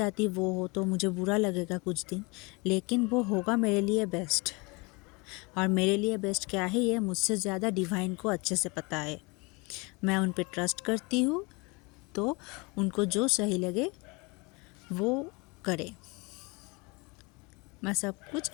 वो हो तो मुझे बुरा लगेगा कुछ दिन, लेकिन वो होगा मेरे लिए बेस्ट। और मेरे लिए बेस्ट क्या है ये मुझसे ज़्यादा डिवाइन को अच्छे से पता है। मैं उन पे ट्रस्ट करती हूँ, तो उनको जो सही लगे वो करे, मैं सब कुछ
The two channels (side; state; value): right; quieter; 27.7 dB